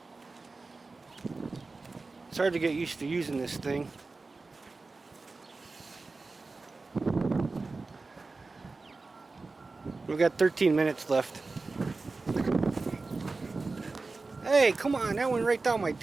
It's hard to get used to using this thing. We've got 13 minutes left. Hey, come on, that went right down my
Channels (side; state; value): left; quieter; 3.7 dB